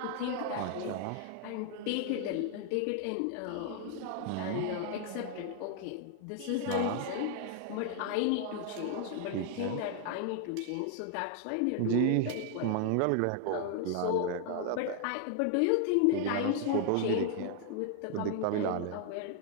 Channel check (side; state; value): both; different; correlation 0.00